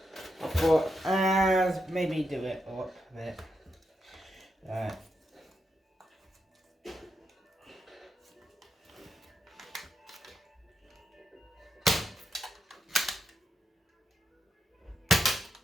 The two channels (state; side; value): normal; both; correlation 0.84